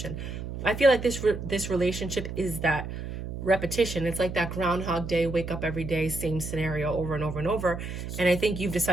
I feel like this relationship is that repetition. It's like that Groundhog Day, wake up every day, same scenario over and over and over. And I think you've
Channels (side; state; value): right; noise; hum, 7 dB below the sound